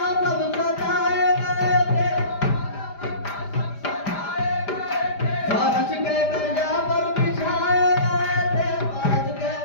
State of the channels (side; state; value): right; late; 5.0 ms